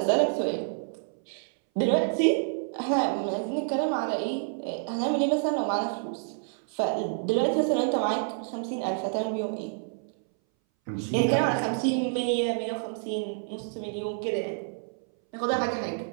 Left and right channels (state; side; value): silent; left; 59 dB below the other